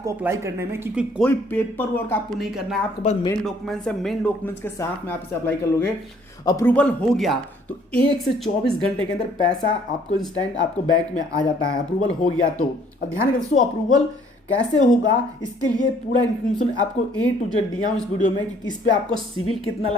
अप्लाई करने में, क्योंकि कोई पेपर वर्क आपको नहीं करना है। आपके पास मेन डॉक्यूमेंट्स है, मेन डॉक्यूमेंट्स के साथ में आप इसे अप्लाई कर लोगे। अप्रूवल हो गया तो 1 से 24 घंटे के अंदर पैसा आपको इंस्टेंट आपको बैंक में आ जाता है। अप्रूवल हो गया तो अब ध्यान रखिए दोस्तों, अप्रूवल कैसे होगा इसके लिए पूरा इन्फॉर्मेशन आपको ए टू जेड दिया हूं इस वीडियो में कि इस पे आपको सिविल कितना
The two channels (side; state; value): both; normal; correlation 0.61